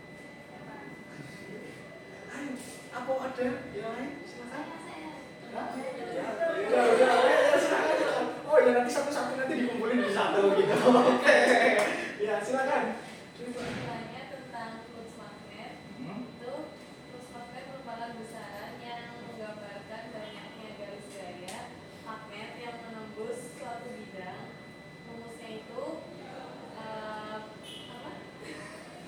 Ayo, apa ada yang lain? Silakan. Ya, silakan. Oh ya, nanti satu-satu nanti dikumpulin di satu gitu. Oke. Ya, silakan. Kesimpulannya tentang kursus magnet itu kursus magnet merupakan besaran yang menggambarkan banyaknya garis gaya magnet yang menembus suatu bidang. Rumusnya itu apa?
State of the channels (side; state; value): both; identical; correlation 1.00